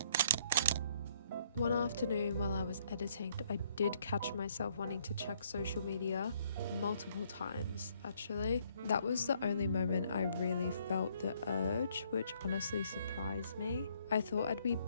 One afternoon while I was editing, I did catch myself wanting to check social media multiple times, actually. That was the only moment I really felt the urge, which honestly surprised me. I thought I'd be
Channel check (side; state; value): both; inverted; correlation -0.67